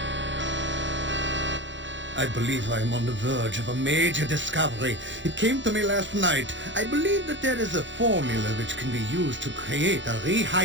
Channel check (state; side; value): late; left; 0.54 ms